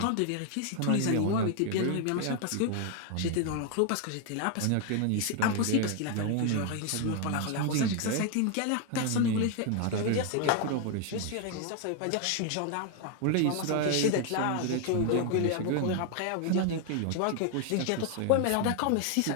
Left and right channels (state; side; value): different; both; correlation 0.00